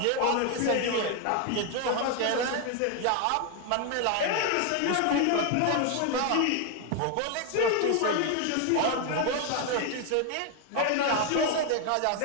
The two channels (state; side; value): different; both; correlation 0.01